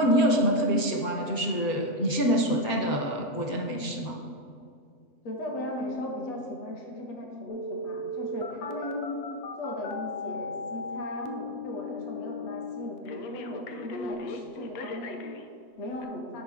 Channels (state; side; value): late; right; 7.7 ms